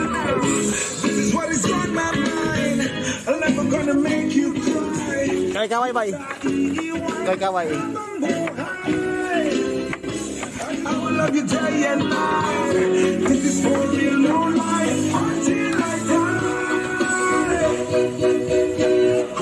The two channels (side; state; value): both; identical; correlation 1.00